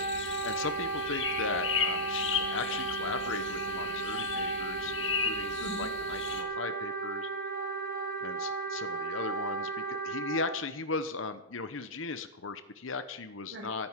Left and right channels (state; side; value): normal; both; correlation -0.11